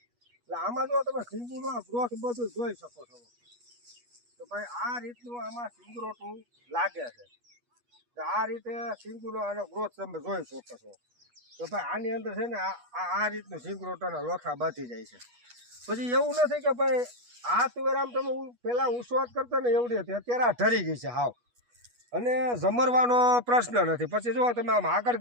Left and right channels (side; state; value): left; late; 8.3 ms